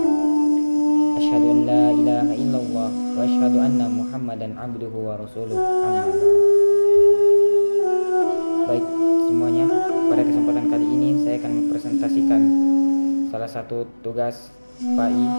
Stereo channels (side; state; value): both; inverted; correlation -1.00